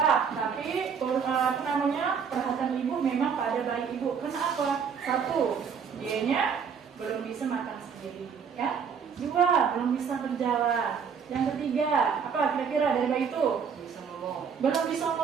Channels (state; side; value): quieter; left; 6.6 dB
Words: perhatian ibu memang pada bayi ibu. Kenapa? Satu, dianya belum bisa makan sendiri, ya. Dua, belum bisa berjalan. Yang ketiga, apa kira-kira dari bayi itu? Bisa ngomong. Belum bisa